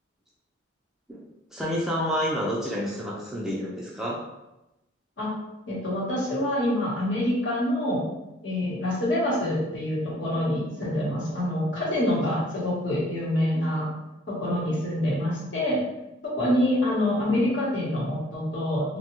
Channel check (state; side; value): normal; both; correlation 0.57